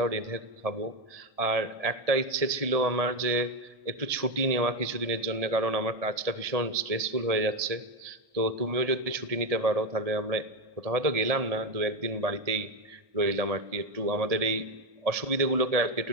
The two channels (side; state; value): left; late; 1.7 ms